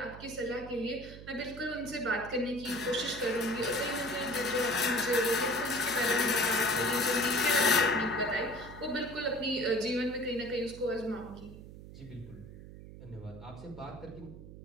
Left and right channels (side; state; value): right; noise; hum, 15 dB below the sound